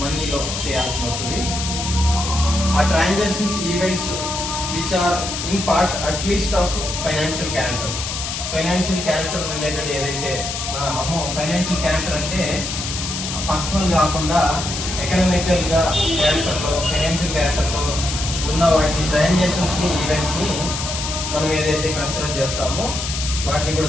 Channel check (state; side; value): noise; left; hiss, 5 dB below the sound